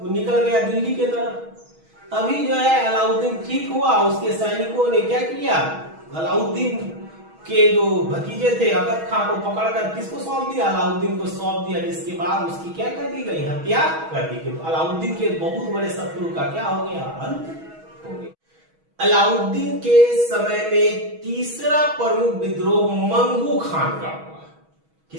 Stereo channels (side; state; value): left; late; 6.3 ms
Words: निकल गया दिल्ली की तरफ। तभी जो है अलाउद्दीन ठीक हुआ, उसके सैनिकों ने क्या किया, अलाउद्दीन के जो भतीजे थे अकद खां को पकड़कर किसको सौंप दिया, अलाउद्दीन को सौंप दिया। जिसके बाद उसकी क्या कर दी गई, हत्या कर दी गई। तो अलाउद्दीन के बहुत बड़े शत्रु का क्या हो गया, अंत हो गया। अलाउद्दीन के समय में तीसरा प्रमुख विद्रोह मंगू खान का हुआ।